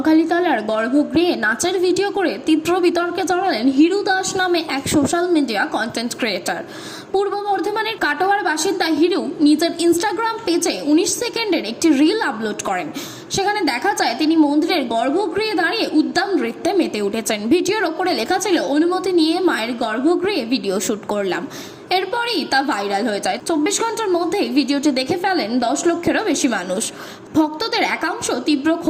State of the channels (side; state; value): both; identical; correlation 1.00